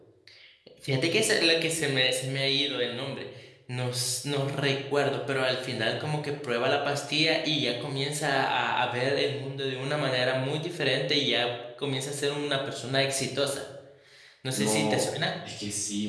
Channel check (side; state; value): both; identical; correlation 1.00